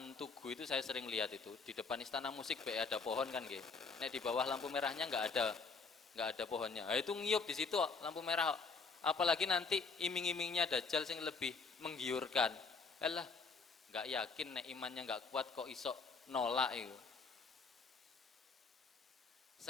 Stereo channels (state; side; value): quieter; right; 4.7 dB